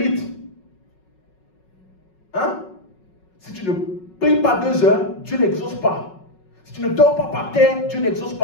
Hein? Si tu ne pries pas 2 heures, Dieu n'exauce pas. Si tu ne dors pas par terre, Dieu n'exauce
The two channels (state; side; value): late; right; 5.4 ms